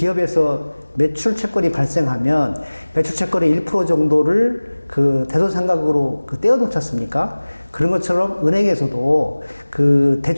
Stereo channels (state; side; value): inverted; both; correlation -1.00